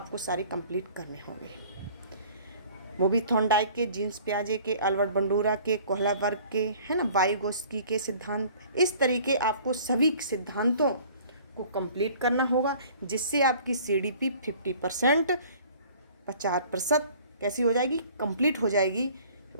सारे कंप्लीट करने होंगे। वो भी थॉर्नडाइक के, जीन्स प्याजे के, अल्बर्ट बंडूरा के, कोहलबर्ग के, है ना, वाइगोत्स्की के सिद्धांत। इस तरीके आपको सभी सिद्धांतों को कंप्लीट करना होगा, जिससे आपकी सीडीपी 50%, 50% कैसी हो जाएगी, कंप्लीट हो जाएगी।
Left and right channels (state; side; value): inverted; both; correlation -0.51